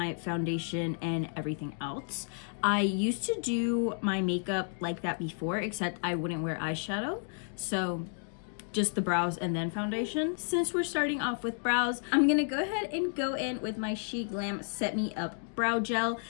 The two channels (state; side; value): silent; right; 57 dB below the other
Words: foundation and everything else. I used to do my makeup like that before, except I wouldn't wear eyeshadow. So just the brows and then foundation. Since we're starting off with brows, I'm gonna go ahead and go in with my She Glam Set Me Up Brow Gel.